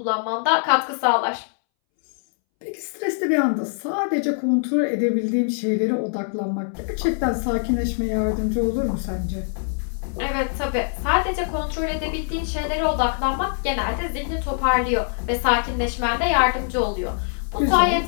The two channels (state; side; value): silent; right; 63 dB below the other